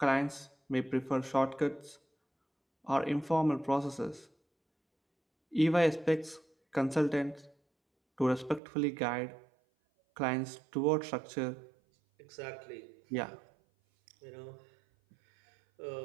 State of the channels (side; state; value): left; drops out; at 8.6 s